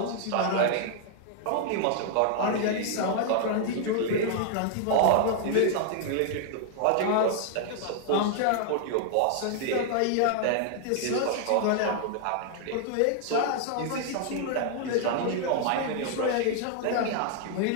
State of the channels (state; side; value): different; both; correlation 0.00